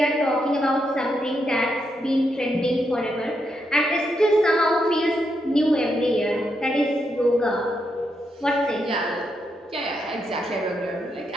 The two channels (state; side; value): normal; both; correlation 0.81